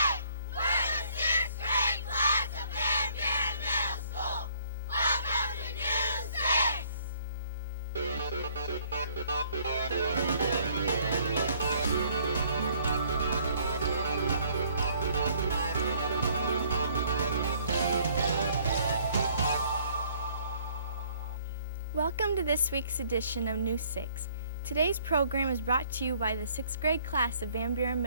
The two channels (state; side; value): inverted; both; correlation -0.62